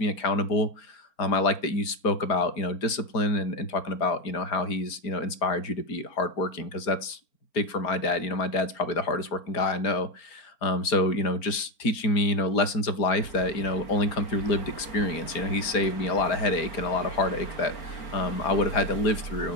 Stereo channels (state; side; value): late; right; 4.4 ms